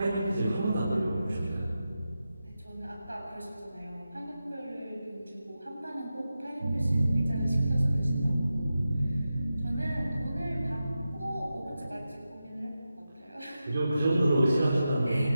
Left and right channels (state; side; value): inverted; both; correlation -0.92